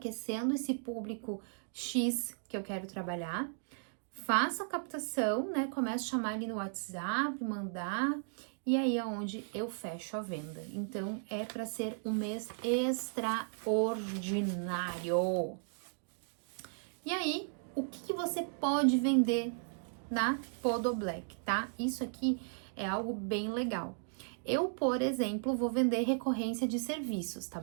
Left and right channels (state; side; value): silent; left; digital silence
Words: esse público X que eu quero trabalhar. Faço a captação, né? Começo a chamar ele no WhatsApp, mandar, e aí é onde eu fecho a venda. Então é para ser um mês extraordinário. E aí, o que você pode vender na Podo Black, tá? Isso aqui é algo bem legal. Eu, por exemplo, vou vender recorrência de serviços, tá